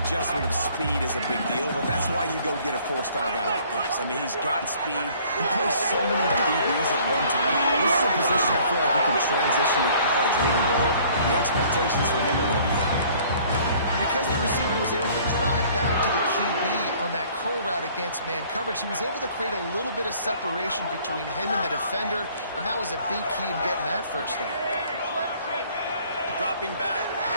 of speed is a big deal, but that's why you go get a 4-star guy like this. I mean, he's got speed. He plays so many DBs at one time. This is a position I feel like he can transition to college really well. The expectations for him are going to be high. Because the receiver was able to drive back to the QB on that curl route against man coverage, he was able to create a little bit of separation between him and the defender, and that was a big key in getting that 1st down. Dropping back,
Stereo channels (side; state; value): both; inverted; correlation -0.56